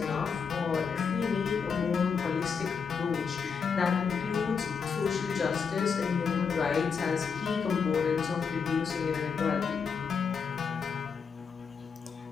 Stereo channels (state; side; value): quieter; right; 6.0 dB